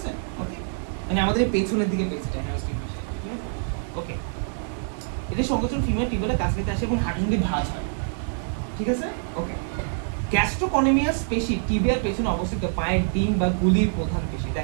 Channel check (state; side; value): silent; left; digital silence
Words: ওকে, মানে আমাদের এই পেছনের দিকে পেশিটা হ্যামস্ট্রিং পেশি, ঠিক আছে? ওকে, এটা সংকোচন ফিমার টিবিয়ালের কাছ থেকে আসে এবং হাঁটুসন্ধি ভাঁজ হয়, ঠিক আছে? ওকে, গ্যাস্ট্রোকনিমিয়াস পেশি টিবিয়ার পেছনে অবস্থিত পায়ের ডিম বা গুলির প্রধান পেশি।